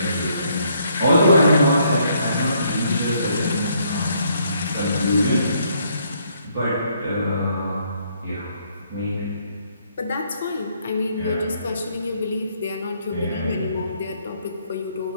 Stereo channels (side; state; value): both; inverted; correlation -0.69